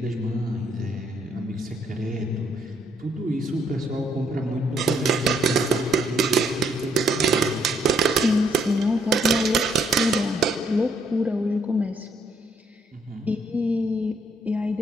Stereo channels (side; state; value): both; normal; correlation 0.71